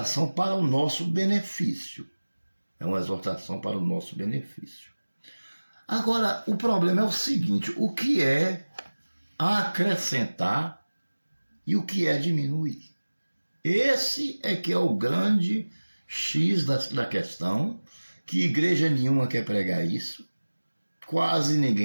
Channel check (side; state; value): both; inverted; correlation -1.00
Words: para o nosso benefício. É uma exortação para o nosso benefício. Agora, o problema é o seguinte: o que é acrescentar e o que é diminuir? Esse é que é o grande X da questão, que igreja nenhuma quer pregar isso, quase